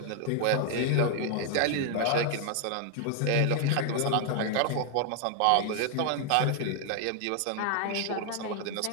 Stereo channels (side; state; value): both; different; correlation 0.00